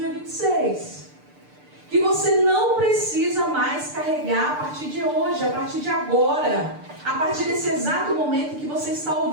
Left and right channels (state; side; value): late; left; 6.7 ms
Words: Que você não precisa mais carregar a partir de hoje, a partir de agora, a partir desse exato momento que você está